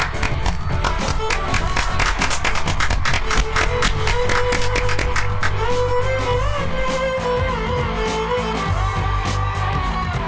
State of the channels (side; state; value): both; identical; correlation 1.00